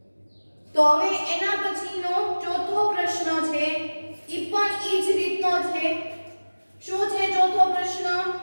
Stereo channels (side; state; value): both; inverted; correlation -1.00